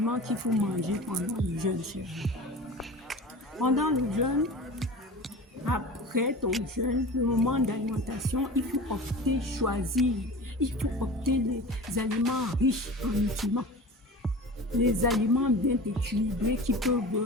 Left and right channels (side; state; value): both; normal; correlation 0.35